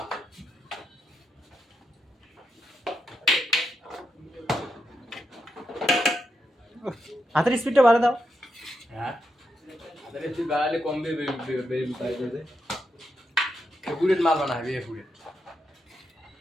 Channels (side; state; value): both; normal; correlation 0.83